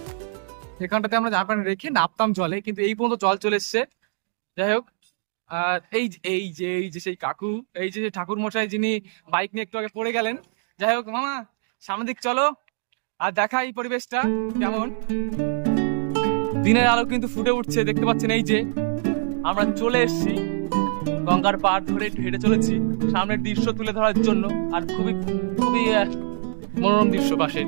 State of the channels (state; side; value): silent; left; digital silence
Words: এখানটাতে আমরা জামা প্যান্ট রেখে নামতাম জলে, কিন্তু এই পর্যন্ত জল চলে এসছে। যাই হোক, আর এই যে সেই কাকু, এই যে ঠাকুর মশাই, যিনি বাইক নিয়ে একটু আগে পড়ে গেলেন। যাই হোক মামা, সামনের দিক চলো আর দেখা এই পরিবেশটা কেমন। দিনের আলো কিন্তু ফুটে উঠছে, দেখতে পাচ্ছেন। এই যে আমরা চলে এসেছি, গঙ্গার পাড় ধরে হেঁটে চলেছি সামনের দৃশ্য তুলে ধরার জন্য। আর খুবই খুবই মনোরম দৃশ্য, পাশের